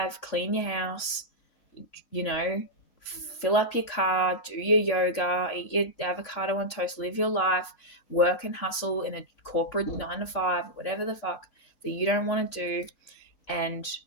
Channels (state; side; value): late; right; 3.6 ms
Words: clean your house, you know, fill up your car, do your yoga, eat your avocado on toast, live your life, work and hustle in a corporate 9 to 5, whatever the fuck that you don't want to do. And